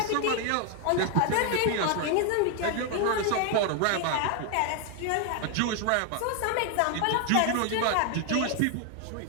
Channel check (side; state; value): both; different; correlation 0.01